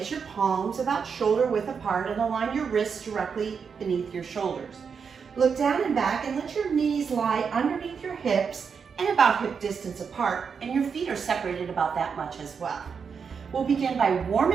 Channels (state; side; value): quieter; left; 6.2 dB